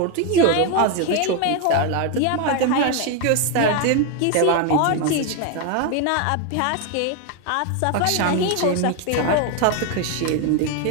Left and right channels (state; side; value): different; both; correlation 0.01